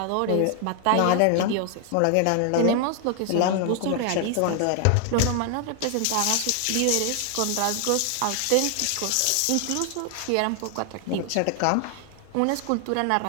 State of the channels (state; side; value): different; both; correlation 0.00